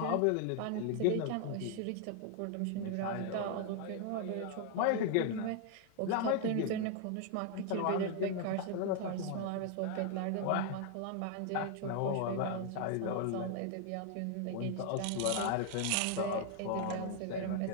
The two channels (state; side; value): different; both; correlation 0.00